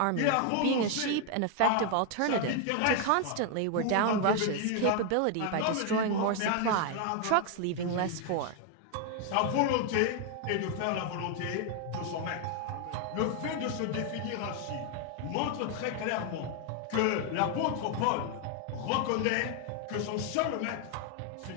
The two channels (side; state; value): both; different; correlation 0.00